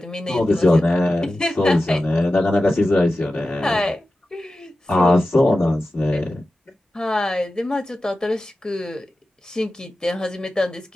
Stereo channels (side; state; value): both; normal; correlation 0.94